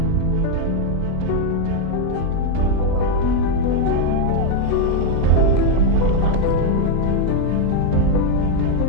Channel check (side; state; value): both; different; correlation 0.01